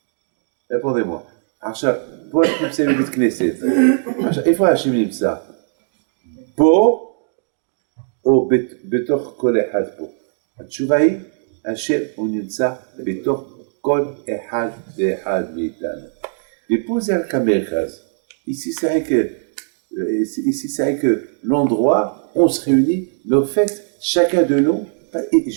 Répondez-moi. עכשיו, פה אנחנו נמצאים בבית כנסת. עכשיו, איפה השם נמצא? פה או בתוך כל אחד פה? התשובה היא, השם הוא נמצא בתוך כל אחד ואחד מאיתנו. ופה זה רק המרכז. Ici, c'est vrai que l'endroit, on se réunit, mais au fait, chacun de nous,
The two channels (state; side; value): silent; left; digital silence